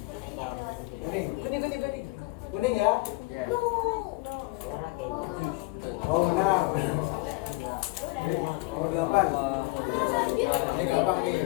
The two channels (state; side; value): quieter; right; 23.9 dB